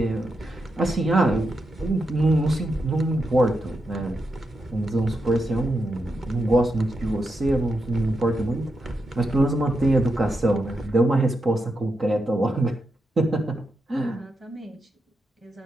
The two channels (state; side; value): normal; both; correlation 0.85